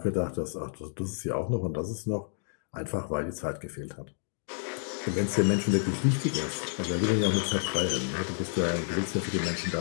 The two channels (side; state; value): right; silent; digital silence